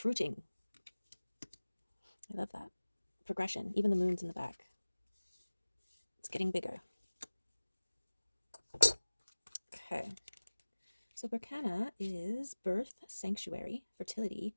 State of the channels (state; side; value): inverted; both; correlation -1.00